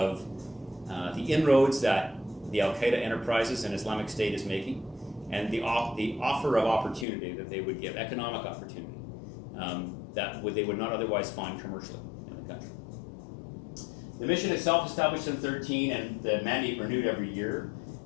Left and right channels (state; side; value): drops out; right; at 7.1 s